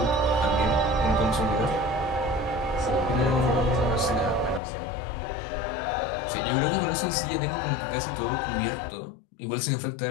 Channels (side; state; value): right; drops out; at 4.6 s